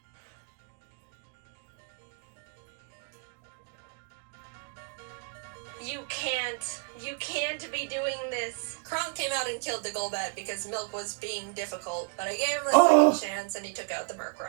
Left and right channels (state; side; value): quieter; left; 35.7 dB